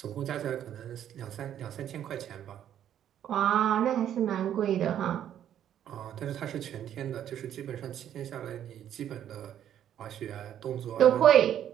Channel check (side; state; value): left; quieter; 10.4 dB